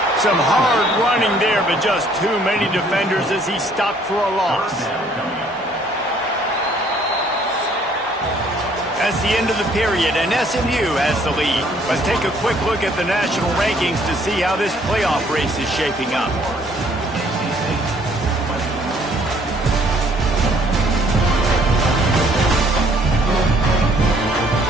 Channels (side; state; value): both; normal; correlation 0.62